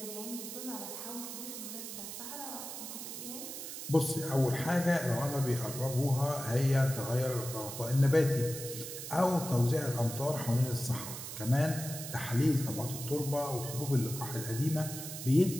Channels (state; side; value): noise; right; hiss, 8 dB below the sound